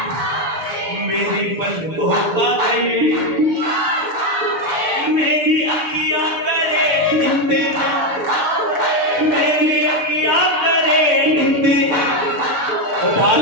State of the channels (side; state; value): left; late; 7.1 ms